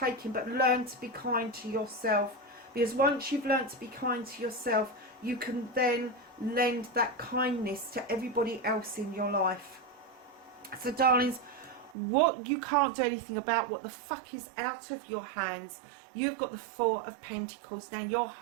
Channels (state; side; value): drops out; left; at 12.0 s